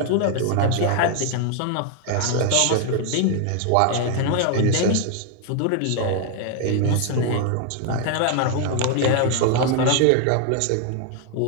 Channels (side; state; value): both; different; correlation 0.00